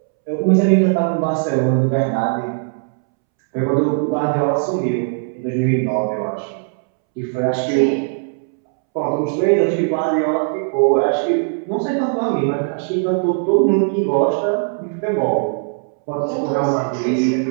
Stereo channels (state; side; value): silent; left; 67 dB below the other